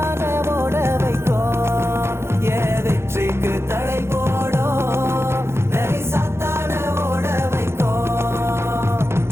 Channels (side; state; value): left; late; 0.12 ms